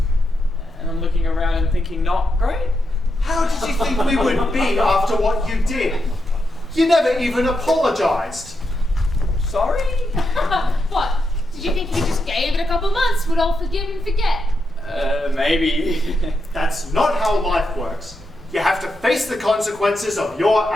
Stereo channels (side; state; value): both; normal; correlation 0.85